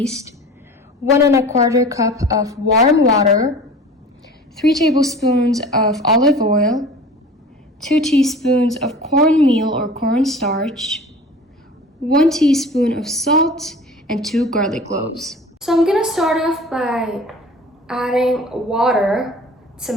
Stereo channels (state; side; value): normal; both; correlation 0.41